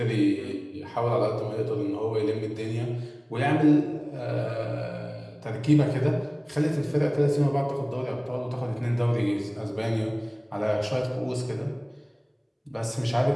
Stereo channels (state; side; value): identical; both; correlation 1.00